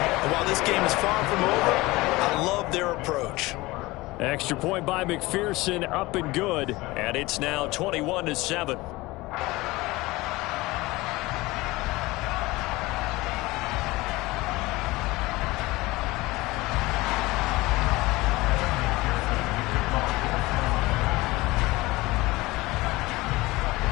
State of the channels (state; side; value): quieter; right; 20.7 dB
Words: while this game is far from over, I love their approach. Extra point by McPherson, up and good. And it's now 21-7.